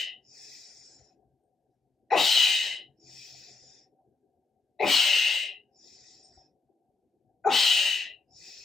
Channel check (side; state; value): right; quieter; 3.9 dB